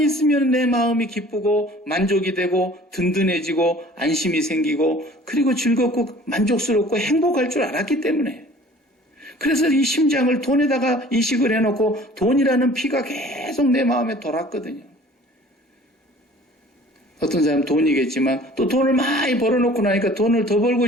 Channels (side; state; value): both; normal; correlation 0.49